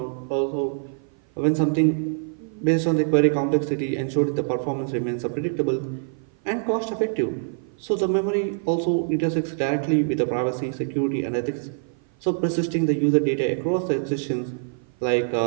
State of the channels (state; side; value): silent; left; 55 dB below the other